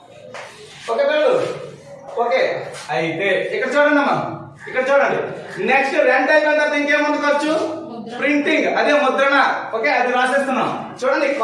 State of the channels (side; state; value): both; identical; correlation 1.00